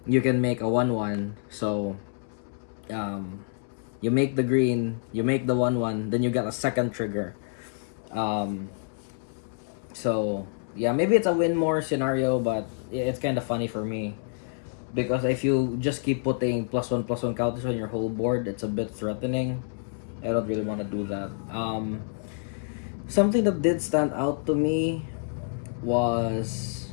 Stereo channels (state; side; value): silent; right; 60 dB below the other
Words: you can make a 1/1. So you make the green, you make the 1/1, then you get a second trigger. So yeah, maybe it's a win more scenario, but it's kind of funny for me because if you just keep putting +1/+1 counters on your whole board, it's a bit threatening. I don't really want to do that. Something that did stand out to me was